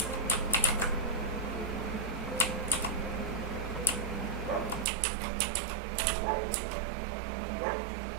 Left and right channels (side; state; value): left; drops out; at 4.9 s